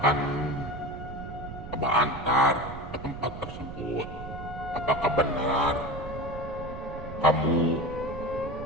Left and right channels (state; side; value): noise; right; rumble, 11 dB below the sound